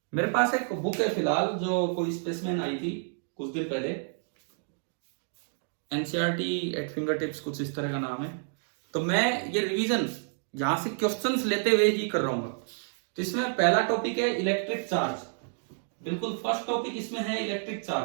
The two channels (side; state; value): left; silent; 58 dB below the other